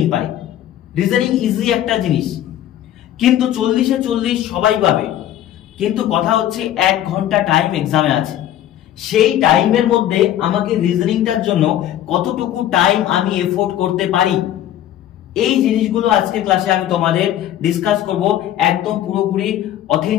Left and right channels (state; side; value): quieter; right; 12.0 dB